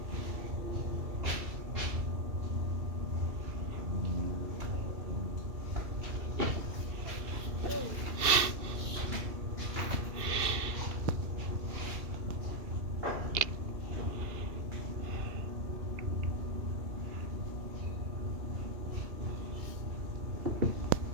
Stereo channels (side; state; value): left; late; 2.7 ms